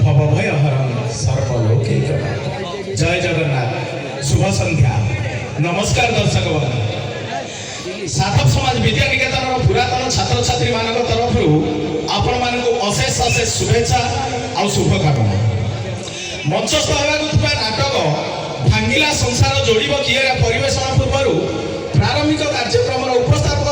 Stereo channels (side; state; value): both; identical; correlation 1.00